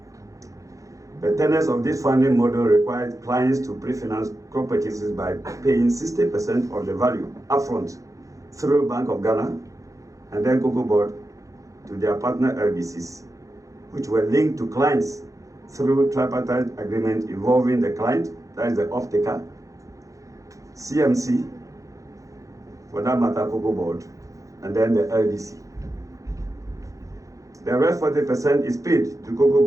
The tenets of this funding model required clients to pre-finance crop purchases by paying 60% of the value upfront through Bank of Ghana and then Cocobod to their partner LBCs, which were linked to clients through tripartite agreement involving the client, that is the off-taker, CMC, for that matter Cocobod, and then the LBC. The rest 40% is paid to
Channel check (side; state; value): left; late; 0.16 ms